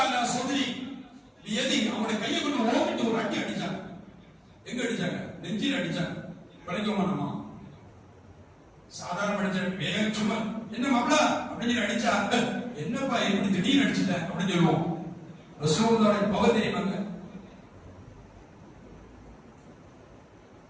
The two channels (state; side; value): identical; both; correlation 1.00